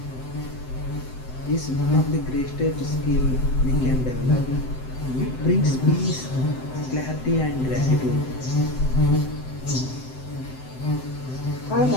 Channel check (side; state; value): right; late; 7.8 ms